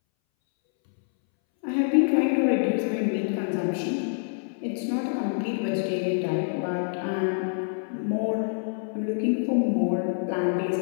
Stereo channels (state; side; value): silent; right; 61 dB below the other